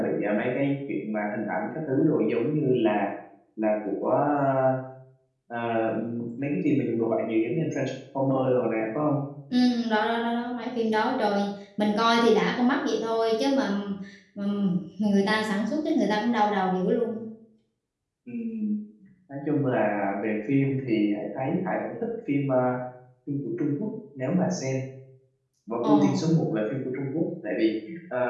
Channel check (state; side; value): identical; both; correlation 1.00